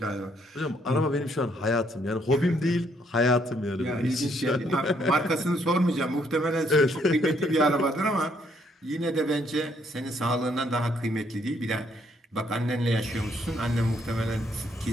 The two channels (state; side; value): normal; both; correlation 0.70